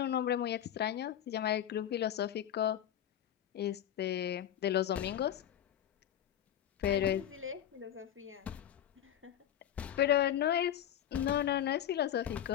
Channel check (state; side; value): quieter; right; 10.6 dB